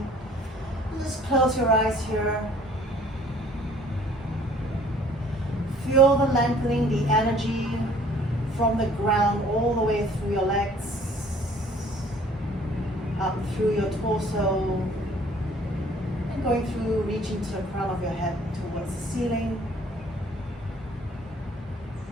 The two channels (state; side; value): normal; both; correlation 0.55